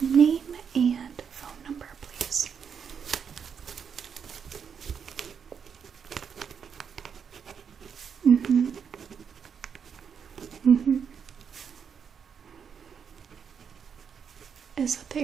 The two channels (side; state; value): left; quieter; 7.0 dB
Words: name and phone number, please? Is that the